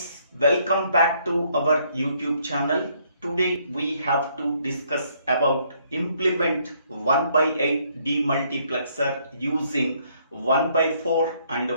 welcome back to our YouTube channel. Today we have to discuss about implement 1 by 8 demultiplexer using 1 by 4 and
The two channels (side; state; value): both; inverted; correlation -0.68